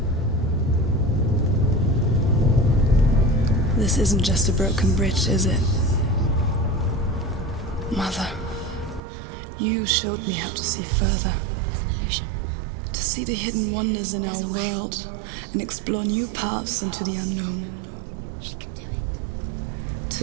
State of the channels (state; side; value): drops out; left; at 9.0 s